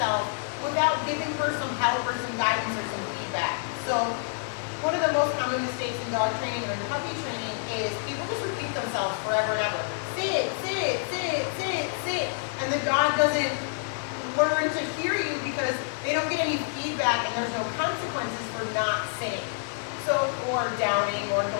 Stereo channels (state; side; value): silent; right; 56 dB below the other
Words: without giving her some help or some guidance or some feedback. So one of the most common mistakes in dog training or in puppy training is people just repeat themselves forever and ever. Sit, sit, sit, sit, sit. And the dog doesn't learn to hear you because they don't get any feedback and there's no consequences for not sitting. So, or downing or